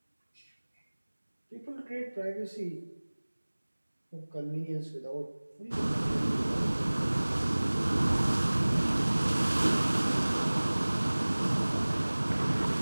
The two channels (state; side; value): inverted; both; correlation -1.00